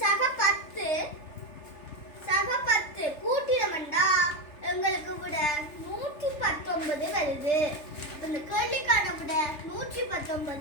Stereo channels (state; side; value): late; right; 3.3 ms